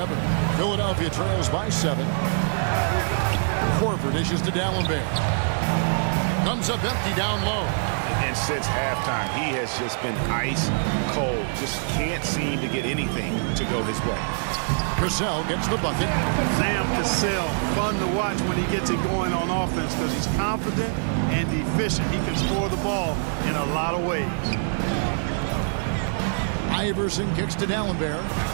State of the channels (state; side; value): silent; left; digital silence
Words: Philadelphia trails by 7. Horford dishes to Dallenberg. Comes up empty down low. And since halftime, he has just been ice cold. Just can't seem to get anything to go his way. Cassell gets the bucket. Sam Cassell, fun to watch when he gets it going on offense because he's confident and efficient. He can score the ball in a lot of ways. Iverson kicks to Dallenberg.